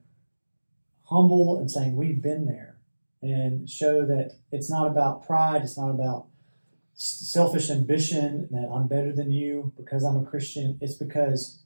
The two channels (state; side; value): inverted; both; correlation -1.00